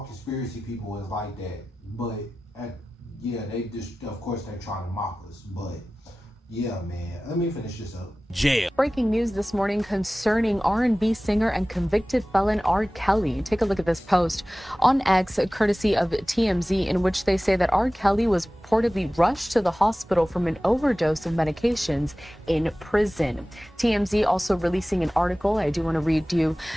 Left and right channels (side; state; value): both; normal; correlation 0.97